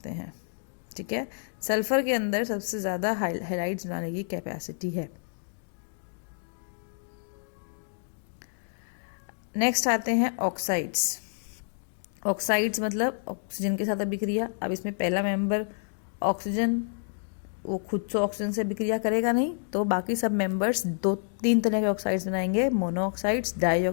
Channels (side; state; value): right; silent; digital silence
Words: हैं। ठीक है। सल्फर के अंदर सबसे ज्यादा हेलाइड्स बनाने की कैपेसिटी है। नेक्स्ट आते हैं ऑक्साइड्स। ऑक्साइड्स मतलब ऑक्सीजन के साथ अभिक्रिया। अब इसमें पहला मेंबर ऑक्सीजन, वो खुद से ऑक्सीजन से अभिक्रिया करेगा नहीं, तो बाकी सब मेंबर्स 2-3 तरह के ऑक्साइड्स बनाएंगे, मोनोऑक्साइड्स,